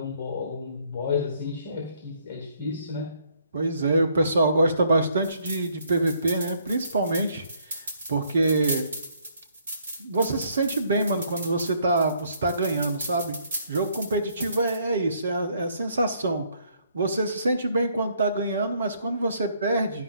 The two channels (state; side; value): inverted; both; correlation -0.67